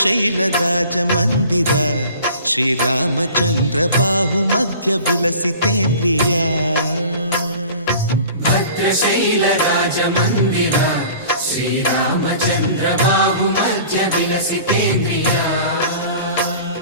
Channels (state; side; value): inverted; both; correlation -0.44